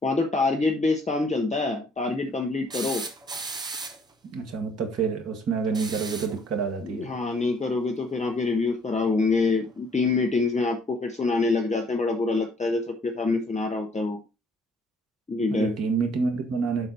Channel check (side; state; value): both; normal; correlation 0.62